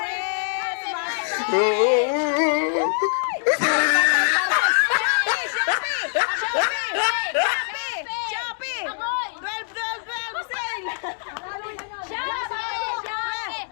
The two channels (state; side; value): silent; right; 63 dB below the other